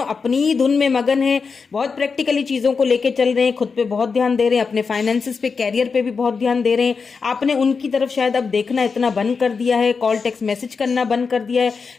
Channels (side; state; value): right; quieter; 5.1 dB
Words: ही धुन में मगन हैं, बहुत प्रैक्टिकली चीज़ों को लेके चल रहे हैं, खुद पे बहुत ध्यान दे रहे हैं, अपने फाइनेंसिस पे, कैरियर पे भी बहुत ध्यान दे रहे हैं। आपने उनकी तरफ शायद अब देखना इतना बंद कर दिया है, कॉल टेक्स्ट मैसेज करना बंद कर दिया है,